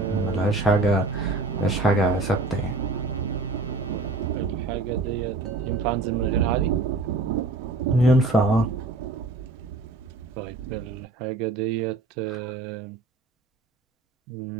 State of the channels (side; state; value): left; quieter; 3.1 dB